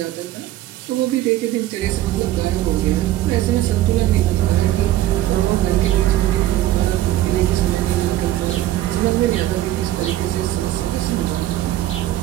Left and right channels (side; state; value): left; quieter; 14.3 dB